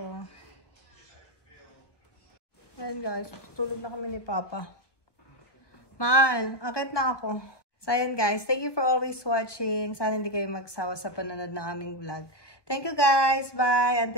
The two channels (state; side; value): late; right; 1.2 ms